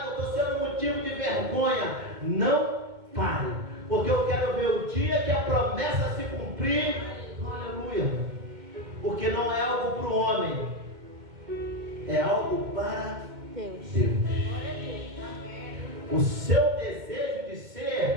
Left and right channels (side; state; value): left; late; 2.1 ms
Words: Eu estou sendo motivo de vergonha. Não pare. Porque eu quero ver o dia que a promessa se cumprir. Aleluia. Porque não é algo para o homem. É algo para Deus. O seu desejo de